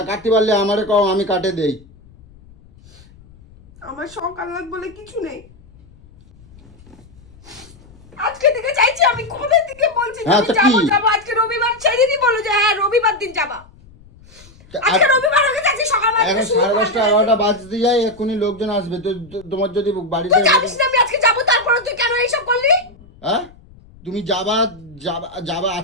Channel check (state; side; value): noise; left; rumble, 25 dB below the sound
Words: কাটতে পারলে আমারে কও, আমি কাটে দেই। আমার শখ আহ্লাদ বলে কিছু নেই। আজকে থেকে চাইছি, আমি কবে থেকে বলছি হ্যাঁ, আমি যাবো। আজকে রবিবার, সেদিনই বলো যে হ্যাঁ রবিবার দিন যাবা। আজকে রবিবার হয়ে গেছে, সকালবেলা এখন 10:30 11টা বাজতে যায়, এক্ষুনি লোকজন আসবে, তো তোমার যদি বাড়িতে তুই জানিস না আমি আজকে যাবো, তারপরে তুই কেন এইসব করলি? হ্যাঁ, তুমি যাবা